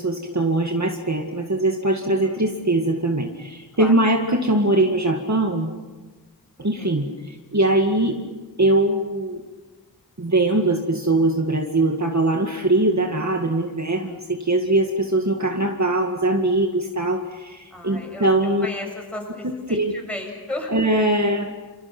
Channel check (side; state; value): both; normal; correlation 0.08